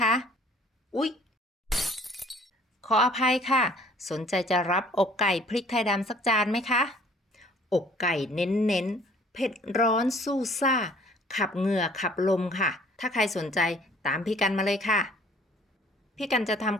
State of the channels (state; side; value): normal; both; correlation 0.55